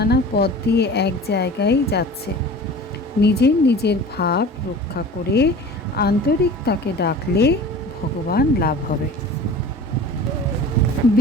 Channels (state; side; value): normal; both; correlation 0.39